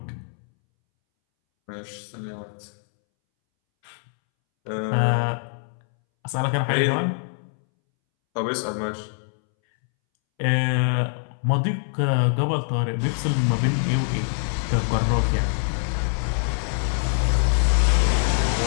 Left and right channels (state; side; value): silent; right; 63 dB below the other